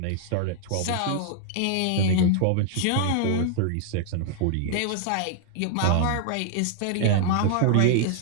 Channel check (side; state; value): both; different; correlation 0.00